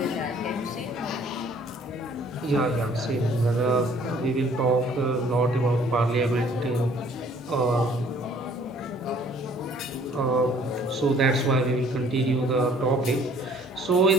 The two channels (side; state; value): both; normal; correlation 0.58